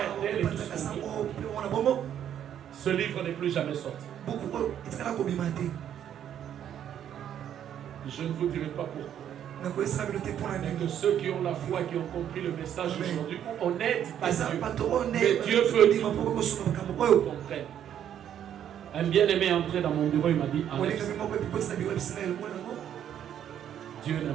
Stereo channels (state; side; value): quieter; left; 9.9 dB